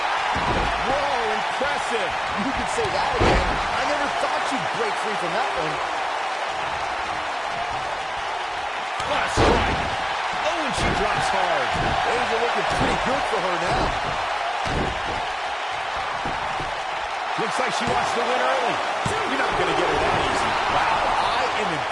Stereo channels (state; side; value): identical; both; correlation 1.00